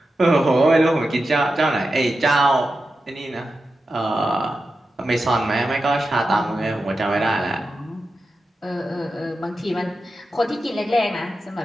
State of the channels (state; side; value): normal; both; correlation 0.91